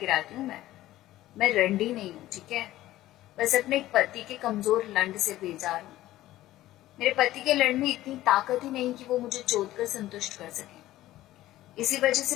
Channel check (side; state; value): right; quieter; 15.3 dB